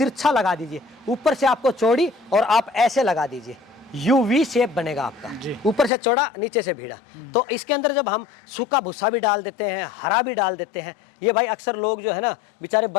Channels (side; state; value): right; drops out; at 5.9 s